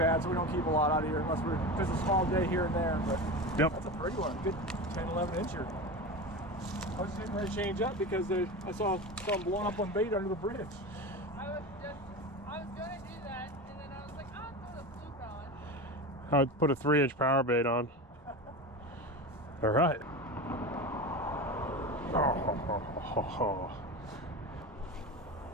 so we don't keep a lot out of here unless we're just a small day here and there. But yep. That's a pretty one. Good 10, 11 incher. I was just getting ready to change up because I saw some blowing up on bait under the bridge. I was gonna do that, and then I was like, I'll throw the fluke on. I would put a 3-inch power bait on. All right. Oh.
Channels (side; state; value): both; normal; correlation 0.26